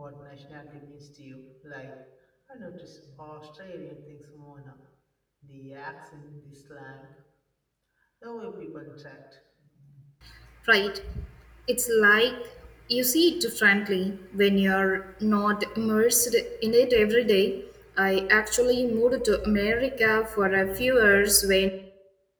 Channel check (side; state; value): both; identical; correlation 1.00